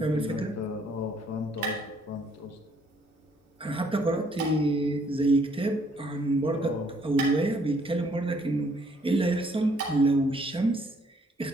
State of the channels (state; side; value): normal; both; correlation 0.65